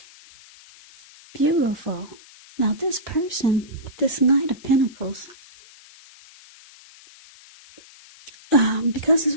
Beautiful. Now this person, this Knight of Pentacles, because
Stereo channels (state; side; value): noise; left; hiss, 23 dB below the sound